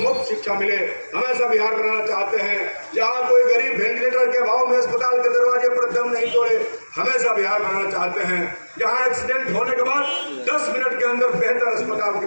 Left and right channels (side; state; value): both; inverted; correlation -1.00